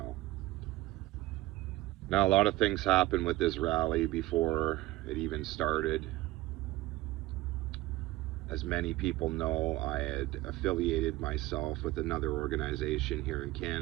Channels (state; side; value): quieter; left; 17.9 dB